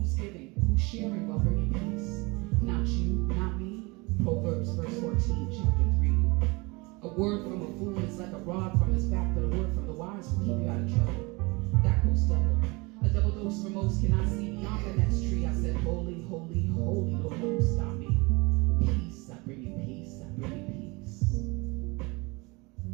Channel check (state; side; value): quieter; left; 26.1 dB